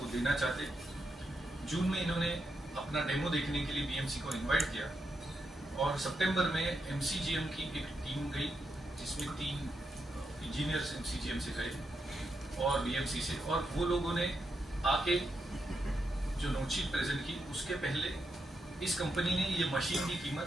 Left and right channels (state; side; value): normal; both; correlation 0.84